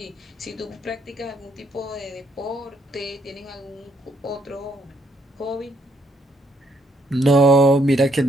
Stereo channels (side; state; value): both; normal; correlation 0.71